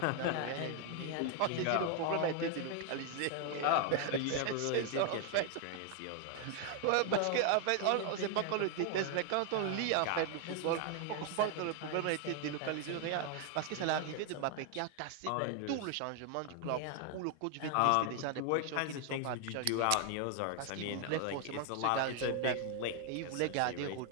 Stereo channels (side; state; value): both; different; correlation 0.00